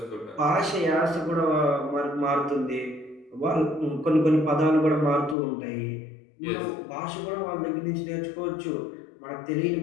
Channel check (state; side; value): drops out; right; at 5.4 s